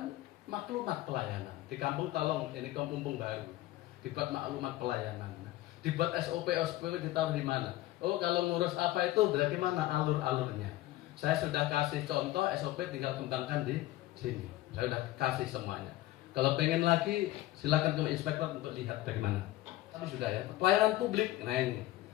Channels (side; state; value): right; quieter; 16.3 dB